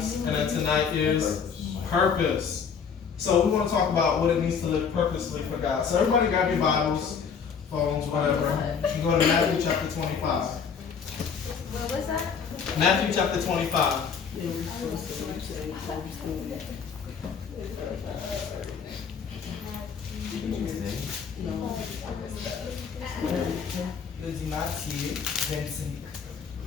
And then tonight is purpose. So we want to talk about what it means to live purposely for God. So everybody grab your Bibles, phones, whatever. You can go to Matthew chapter 25. What was that? Matthew chapter 25. Eu dis Matthieu 25.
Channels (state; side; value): quieter; right; 6.5 dB